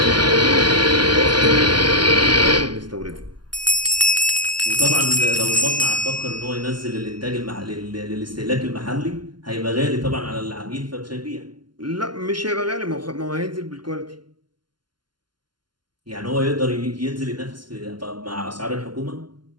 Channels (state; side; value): late; left; 0.71 ms